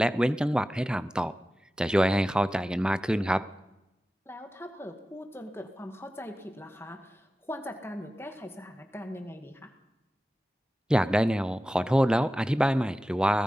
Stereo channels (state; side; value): normal; both; correlation 0.94